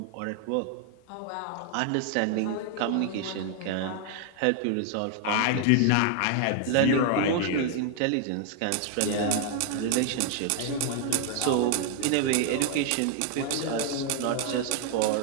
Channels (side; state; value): both; different; correlation 0.00